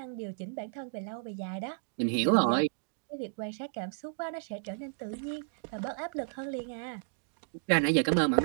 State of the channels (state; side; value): silent; left; digital silence